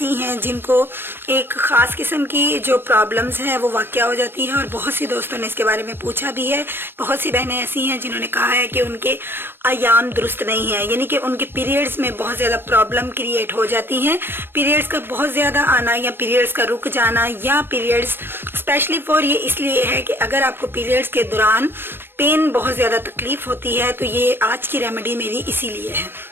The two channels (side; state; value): left; late; 0.10 ms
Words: हैं जिनको एक ख़ास किस्म की जो प्रॉब्लम्स हैं वो वाक़या हो जाती है, और बहुत सी दोस्तों ने इसके बारे में पूछा भी है। बहुत सी बहनें ऐसी हैं जिन्होंने कहा है कि उनके अयाम दुरुस्त नहीं है, यानी कि उनके पीरियड्स में बहुत ज़्यादा प्रॉब्लम क्रिएट हो जाती हैं। पीरियड्स का बहुत ज़्यादा आना या पीरियड्स का रुक जाना, या पीरियड्स स्पेशली फॉर ये इसलिए है कि अगर आपको पीरियड्स के दौरान पेन बहुत ज़्यादा तकलीफ़ होती है तो ये आज की रेमेडी मेरी इसीलिए है।